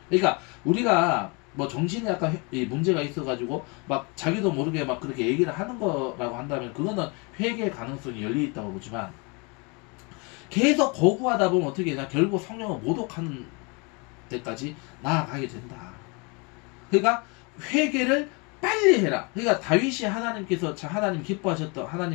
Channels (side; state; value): right; quieter; 30.6 dB